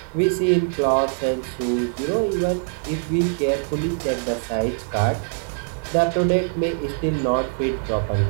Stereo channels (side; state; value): left; silent; digital silence